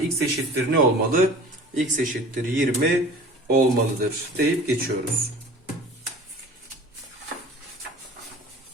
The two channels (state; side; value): normal; both; correlation 0.44